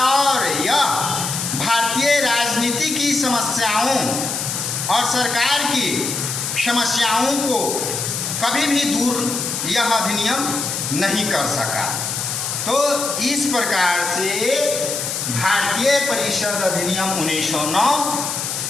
और यह भारतीय राजनीति की समस्याओं और सरकार की समस्याओं को कभी भी दूर यह अधिनियम नहीं कर सका। तो इस प्रकार से भारतीय परिषद अधिनियम 1909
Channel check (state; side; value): noise; left; hiss, 3 dB below the sound